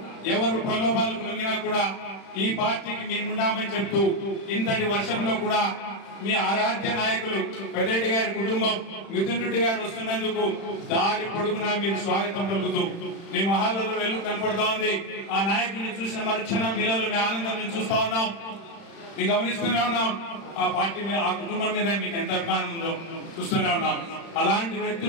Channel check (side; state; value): right; late; 36 ms